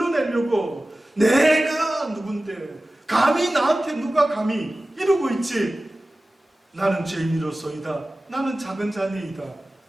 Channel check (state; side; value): normal; both; correlation 0.96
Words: 내가 누군데 감히 나한테 누가 감히 이러고 있지. 나는 죄인이로소이다. 나는 작은 자니이다.